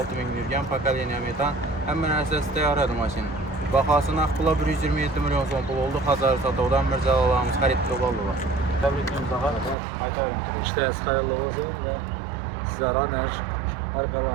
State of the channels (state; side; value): drops out; left; at 9.8 s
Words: min yürgən pokoleniya metan. Həmin əsas təyarədir maşın. Baxasına pula 127 milyon son pul oldu. Xazarı satavdan Mirzalılarımız xaridli oldular. Təbrikliyimiz daha aytarım. İşleriniz hayırlı olsun ve sizlere